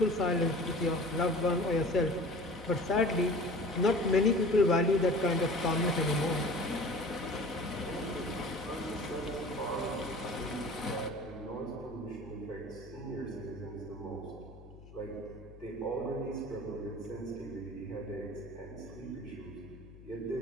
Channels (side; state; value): left; noise; hum, 19 dB below the sound